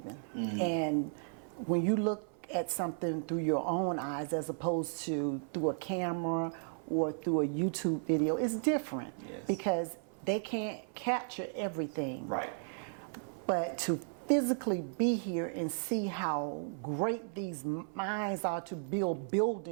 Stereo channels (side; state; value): left; silent; 55 dB below the other